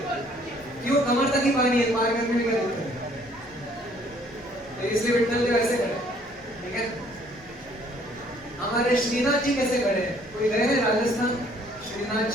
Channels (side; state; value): left; noise; hum, 25 dB below the sound